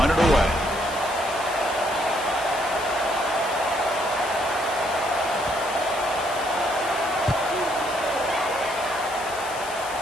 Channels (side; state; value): left; noise; hiss, 13 dB below the sound